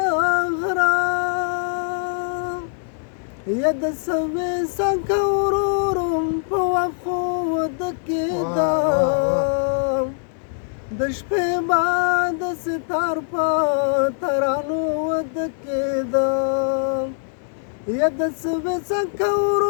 غره یا د سوې څنګه ورورم په وښو ودکېدم د شپې بعد ستار په ترانو ودکېدم یا د سوې څنګه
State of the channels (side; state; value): right; silent; 64 dB below the other